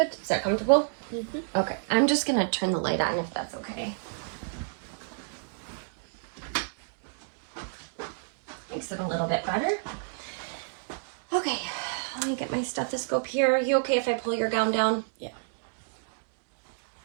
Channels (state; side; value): silent; left; digital silence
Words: Is that comfortable? Mm-hmm. Okay. I'm just going to turn the light on if that's okay. Makes it a little bit better. Okay. Let me get my stethoscope here. Are you okay if I pull your gown down? Yeah.